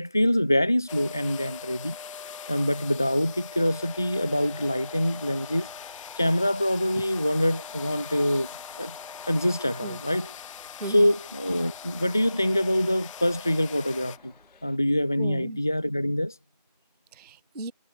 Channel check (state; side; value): inverted; both; correlation -0.95